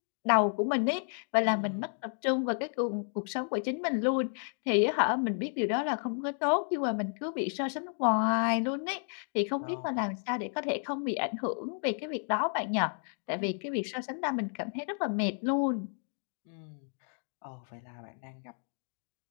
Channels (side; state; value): right; silent; 56 dB below the other